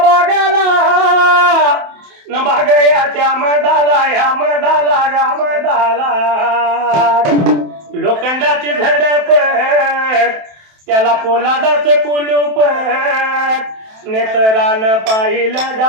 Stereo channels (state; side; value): late; left; 27 ms